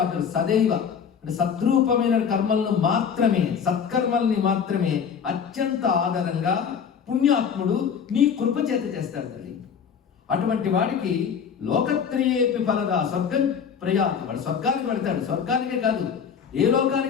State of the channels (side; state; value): right; quieter; 7.1 dB